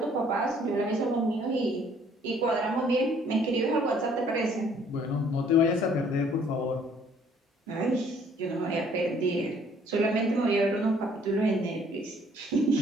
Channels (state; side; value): normal; both; correlation 0.60